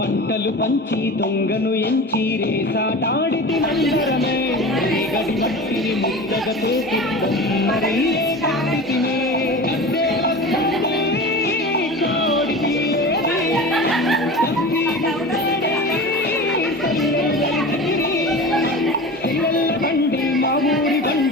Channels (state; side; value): normal; both; correlation 0.32